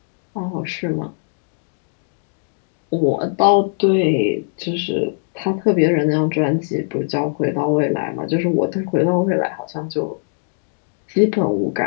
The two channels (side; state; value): right; silent; digital silence